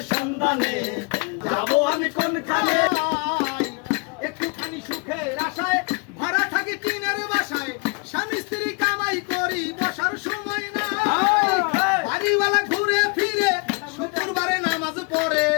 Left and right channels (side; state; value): right; quieter; 32.9 dB